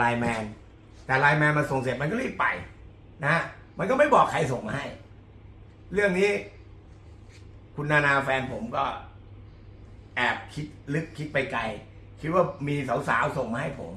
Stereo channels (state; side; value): identical; both; correlation 1.00